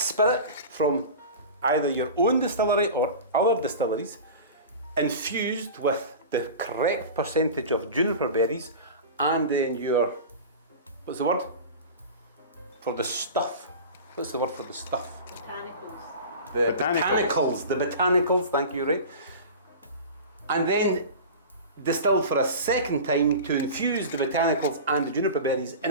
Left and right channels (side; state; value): both; inverted; correlation -0.33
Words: from either your own distillery or other distilleries, infused with the correct percentage of juniper berries, and then your, what's the word? For the stuff. What's the word for the stuff? Botanicals. The Botanicals. The botanicals, thank you, Ray. And then distilled for a second time to infuse the botanicals and the juniper berries in